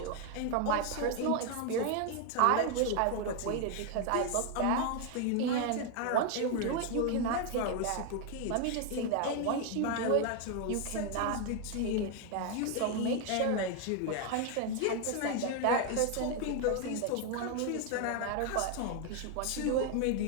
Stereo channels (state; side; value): different; both; correlation 0.01